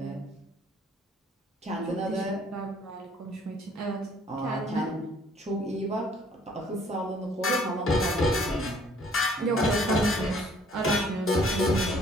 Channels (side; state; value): both; normal; correlation 0.59